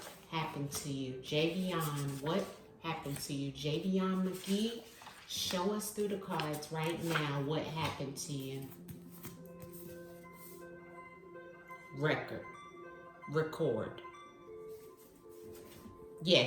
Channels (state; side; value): identical; both; correlation 1.00